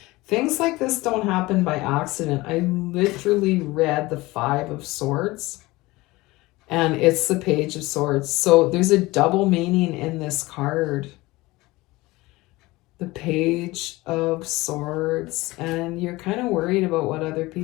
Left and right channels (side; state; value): right; quieter; 20.5 dB